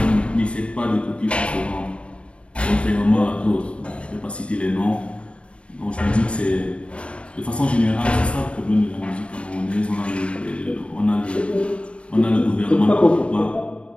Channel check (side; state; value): right; late; 0.060 ms